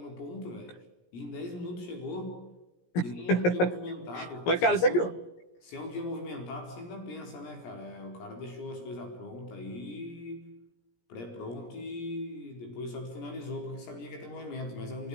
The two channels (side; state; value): right; late; 17 ms